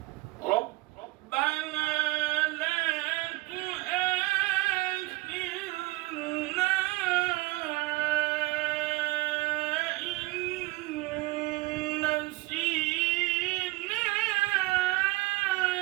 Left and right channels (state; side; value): quieter; left; 21.3 dB